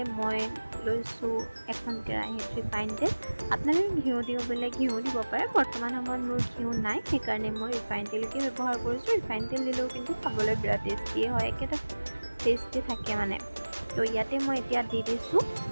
মই লৈছোঁ এখন কেৰাহীত ৰিফাইন তেল আপোনালোকে ঘিউ দিওঁ বোলে ঘিউ দিব পাৰে বৰ্তমান সময়ত মোৰ ঘিউ নাই সেইকাৰণে মই ৰিফাইন তেলকে ব্যৱহাৰ কৰিছোঁ ৰিফাইন তেল দিলেও কিন্তু খাবলৈ বিৰাট টেষ্টি হয় একেটা টেষ্টি থাকে মানে তো ইয়াতে মই এতিয়া দি দিছোঁ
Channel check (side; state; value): both; inverted; correlation -1.00